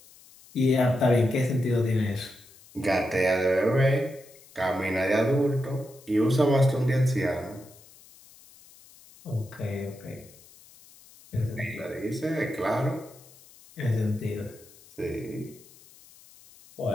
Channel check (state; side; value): noise; left; hiss, 24 dB below the sound